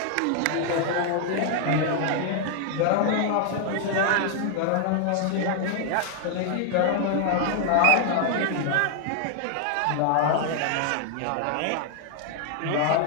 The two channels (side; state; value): both; different; correlation 0.00